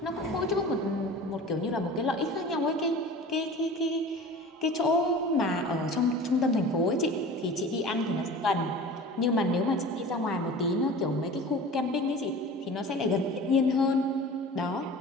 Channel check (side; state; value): both; normal; correlation 0.39